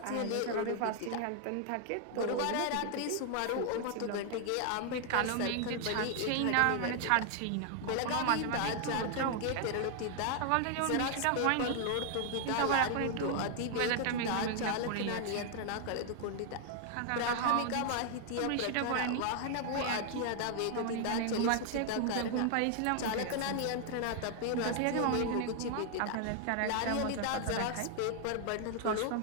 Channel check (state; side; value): different; both; correlation 0.00